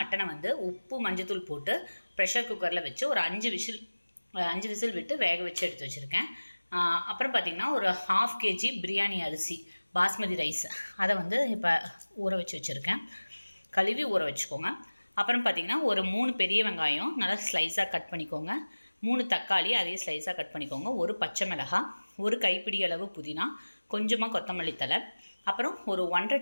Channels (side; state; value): both; inverted; correlation -1.00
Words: வந்து உப்பு மஞ்சத்தூள் போட்டு ப்ரெஷர் குக்கரில் வச்சு ஒரு 5 விசில் விட்டு வேக வச்சு எடுத்து வச்சுருக்கேன். அப்புறம் பார்த்திங்கன்னா ஒரு 1/2 kg பிரியாணி அரிசி பாஸ்மதி ரைஸ் அதை வந்து இப்போ ஊற வச்சு வச்சுருக்கேன். கழுவி ஊற வச்சுக்கோங்க. அப்புறம் பார்த்திங்கன்னா ஒரு 3 பெரிய வெங்காயம் நல்லா ஸ்லைஸாக கட் பண்ணிக்கோங்க. 3 தக்காளி அதே ஸ்லைஸாக கட் பண்ணிக்கோங்க. ஒரு பச்சை மிளகாய், ஒரு கைப்பிடி அளவு புதினா, கொஞ்சமாக கொத்தமல்லி தழை, அப்புறம் ஒரு 1.5